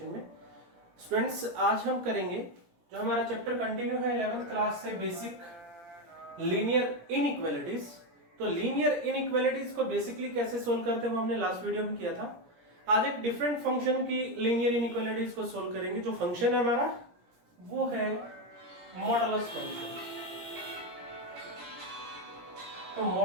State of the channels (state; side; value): late; left; 17 ms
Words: में। स्टूडेंट्स, आज हम करेंगे जो हमारा चैप्टर कंटिन्यू है 11th क्लास से बेसिक लीनियर इनइक्वालिटीज। तो लीनियर इनइक्वालिटीज को बेसिकली कैसे सोल्व करते हैं वो हमने लास्ट वीडियो में किया था। आज एक डिफरेंट फंक्शन की लीनियर इनइक्वालिटीज को सोल्व करेंगे। जो फंक्शन है हमारा वो है मॉडुलस फंक्शन। तो